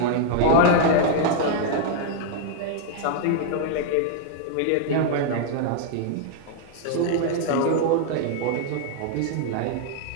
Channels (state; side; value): different; both; correlation -0.01